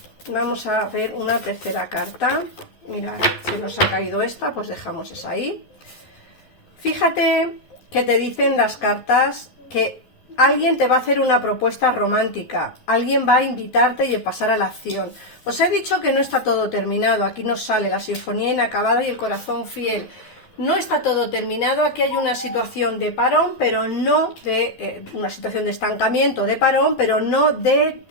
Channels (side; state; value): right; late; 11 ms